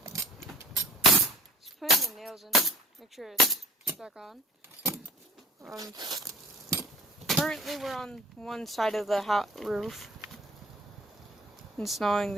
Just putting the nails in. Make sure it's stuck on. Currently we're on one side of the roof. Installing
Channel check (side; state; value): both; normal; correlation 0.48